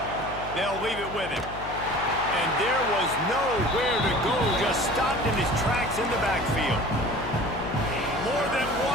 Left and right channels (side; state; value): left; noise; hum, 12 dB below the sound